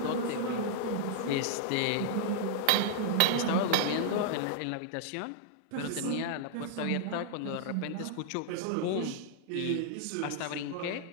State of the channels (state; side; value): different; both; correlation -0.01